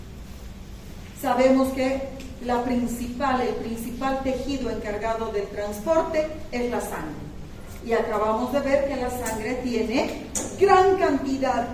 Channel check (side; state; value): both; identical; correlation 1.00